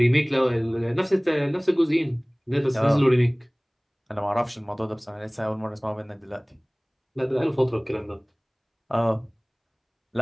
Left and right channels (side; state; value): both; identical; correlation 1.00